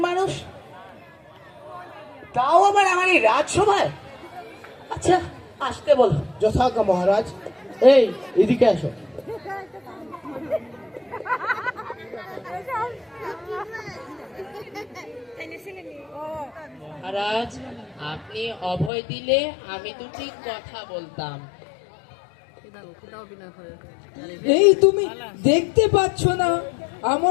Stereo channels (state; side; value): drops out; right; at 18.9 s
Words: মানুষ? তাও আবার আমার এই রাজসভায়? আচ্ছা আসতে বলো। যথাজ্ঞা মহারাজ। এই এদিকে আসো। মহারাজ, আপনি অভয় দিলে আমি দুটি কথা বলতাম। এই তুমি দেখতে পাচ্ছ না